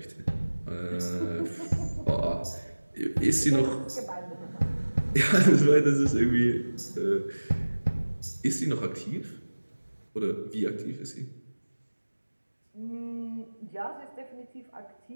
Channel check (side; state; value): both; inverted; correlation -1.00